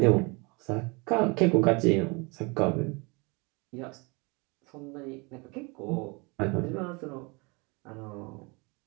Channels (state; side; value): quieter; left; 28.8 dB